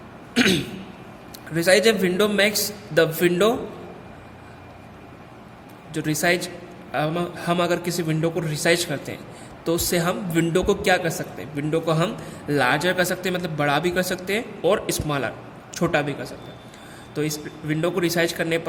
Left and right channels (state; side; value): identical; both; correlation 1.00